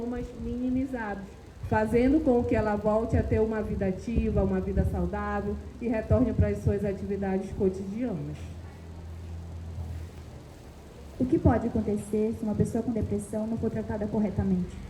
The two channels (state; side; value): identical; both; correlation 1.00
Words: minimizados, fazendo com que ela volte a ter uma vida ativa, uma vida saudável e retorne para as suas atividades cotidianas. O que pode acontecer se uma pessoa com depressão não for tratada corretamente?